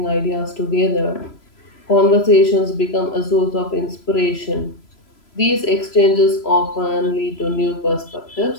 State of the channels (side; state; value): right; late; 3.0 ms